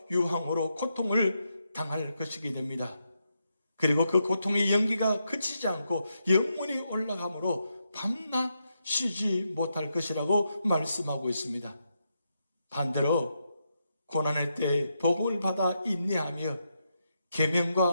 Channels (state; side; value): inverted; both; correlation -0.83